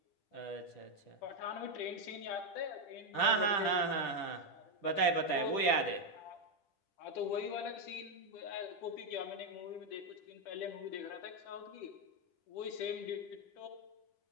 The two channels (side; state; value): right; late; 10 ms